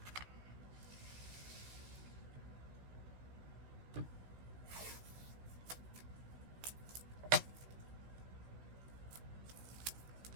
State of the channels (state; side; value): late; left; 16 ms